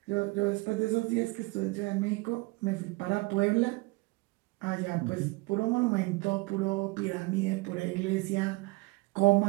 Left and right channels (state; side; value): quieter; left; 24.6 dB